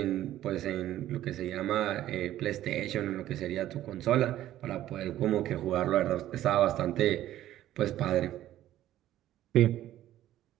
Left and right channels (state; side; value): quieter; left; 13.3 dB